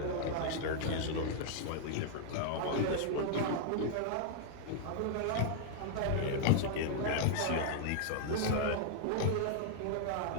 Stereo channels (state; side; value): different; both; correlation -0.01